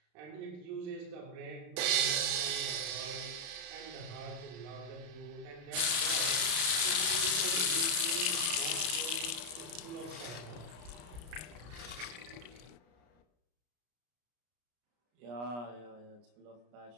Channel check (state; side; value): late; left; 33 ms